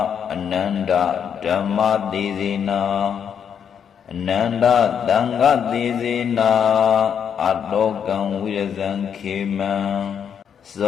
အနန္တဓမ္မသေစေနာအနန္တသံဃသေစေနာအတောကံဝိရဇံခေမံဇ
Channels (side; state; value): right; quieter; 7.8 dB